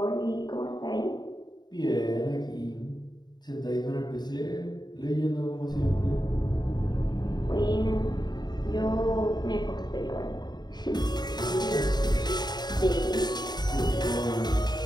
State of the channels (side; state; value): right; late; 0.20 ms